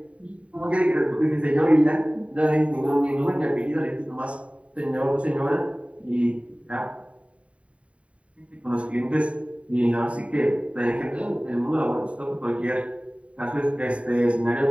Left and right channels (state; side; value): late; left; 0.064 ms